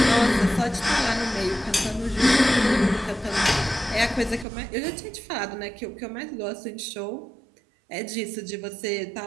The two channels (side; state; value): left; drops out; at 4.5 s